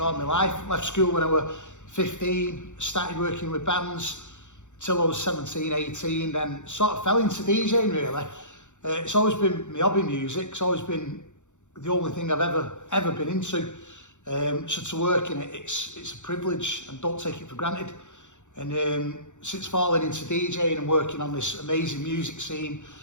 my life. Left school when I was 15, started working with bands till I was 17, 18, then sort of fell into DJing really. It's always been my hobby, music. It's always been the only thing I've ever been into. So to work in it, it's a privilege and don't take it for granted. And since falling into DJing and working on this amazing music scene,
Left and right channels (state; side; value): late; right; 0.84 ms